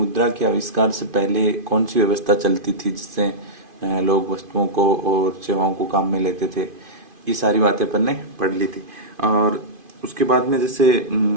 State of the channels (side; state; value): left; late; 2.5 ms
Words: के आविष्कार से पहले कौन सी व्यवस्था चलती थी जिससे लोग वस्तुओं को और सेवाओं को काम में लेते थे। ये सारी बातें अपन ने पढ़ ली थी। और उसके बाद में जैसे